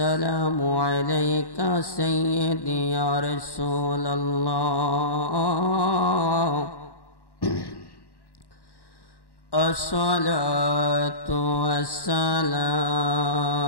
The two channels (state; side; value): late; right; 1.1 ms